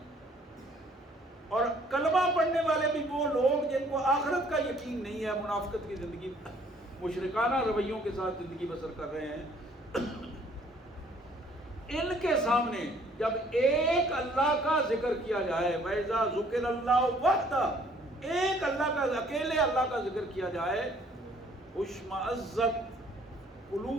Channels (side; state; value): both; normal; correlation 0.60